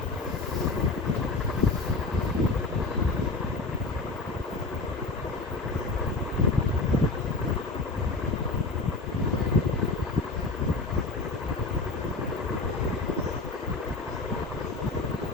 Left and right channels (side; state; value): right; quieter; 3.5 dB